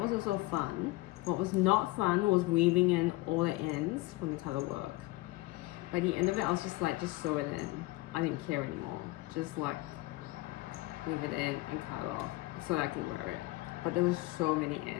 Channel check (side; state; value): right; quieter; 20.5 dB